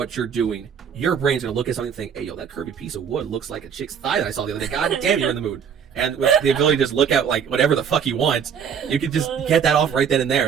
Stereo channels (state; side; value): quieter; left; 7.5 dB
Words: you're doing, your brain's gonna look at something and think, hey, yo, that curvy piece of wood looks like a chick's thigh that I saw the other day. God damn, you're in the mood. And with the ability to just look at, like, whatever the fuck you want, you can just get that off right then and there.